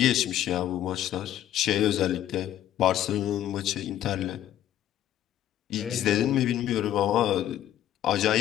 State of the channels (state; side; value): quieter; right; 12.0 dB